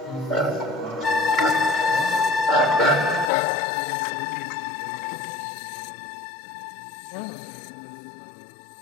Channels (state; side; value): drops out; right; at 3.3 s